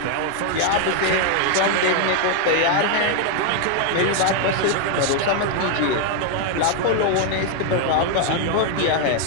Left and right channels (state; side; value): different; both; correlation 0.01